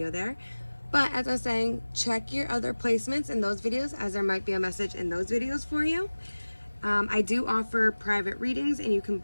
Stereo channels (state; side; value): inverted; both; correlation -1.00